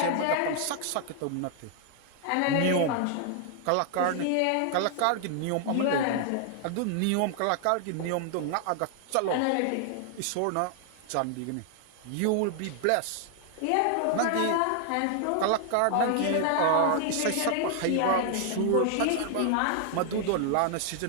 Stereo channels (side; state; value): both; different; correlation 0.00